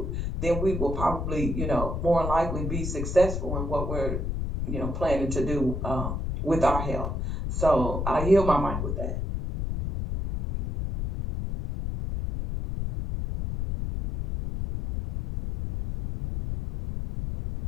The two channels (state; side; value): noise; left; rumble, 3 dB below the sound